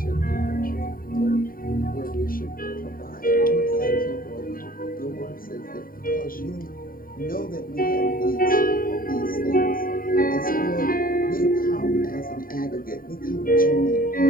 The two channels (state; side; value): late; right; 0.41 ms